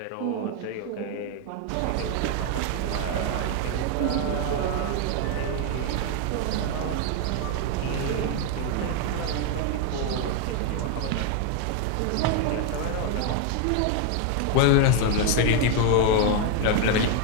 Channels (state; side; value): different; both; correlation 0.01